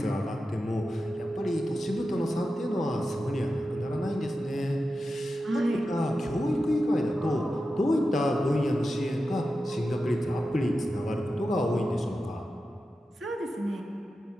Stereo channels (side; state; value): both; normal; correlation 0.91